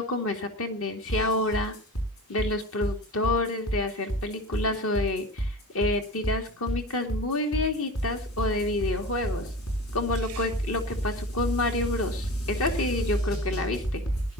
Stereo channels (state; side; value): normal; both; correlation 0.32